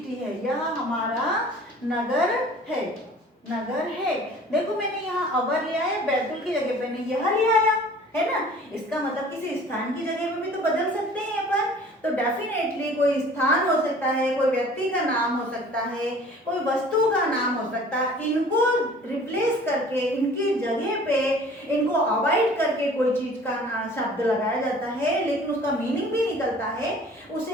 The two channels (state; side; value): normal; both; correlation 0.48